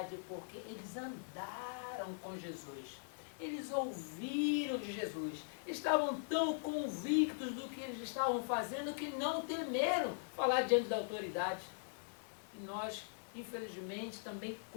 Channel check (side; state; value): right; silent; digital silence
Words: porque eles andaram com Jesus. Eles ouviram de Jesus. Estavam tão convictos do que eles estavam fazendo que não temeram falar diante da autoridade. E nós, infelizmente, também